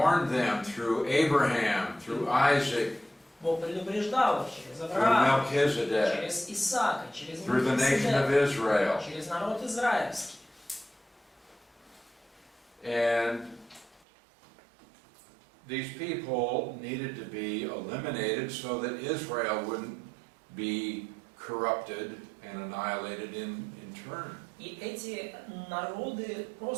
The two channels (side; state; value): left; drops out; at 14.0 s